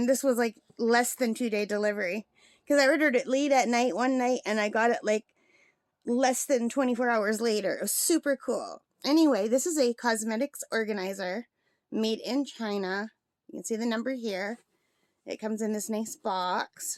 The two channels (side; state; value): both; identical; correlation 1.00